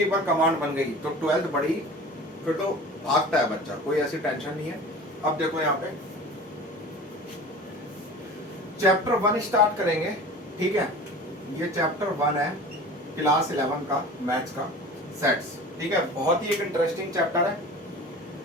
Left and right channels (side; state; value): both; normal; correlation 0.39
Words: एक बार कमांड बन गई तो 12th बड़ी, फिर तो भागता है बच्चा, कोई ऐसी टेंशन नहीं है। अब देखो यहाँ पे चैप्टर 1 स्टार्ट करेंगे। ठीक है, ये चैप्टर 1 है क्लास 11 का मैथ्स का सेट्स। ठीक है, बहुत ही एक इंटरेस्टिंग चैप्टर है।